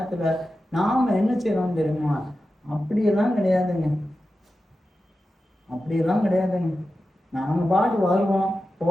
நாம என்ன செய்யறோம் தெரியுமா? அப்படியெல்லாம் கிடையாதுங்க, அப்படியெல்லாம் கிடையாதுங்க. நாம பாட்டு வருவோம்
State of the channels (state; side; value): normal; both; correlation 0.92